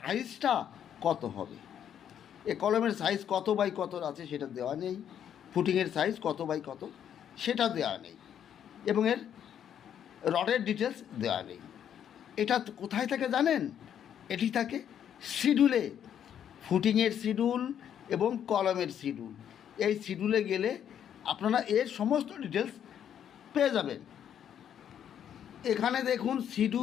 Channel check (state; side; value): quieter; right; 9.3 dB